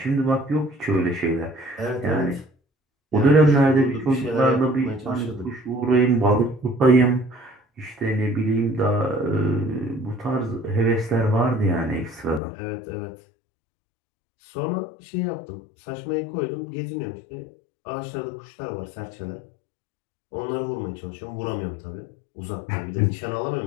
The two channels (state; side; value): drops out; right; at 12.4 s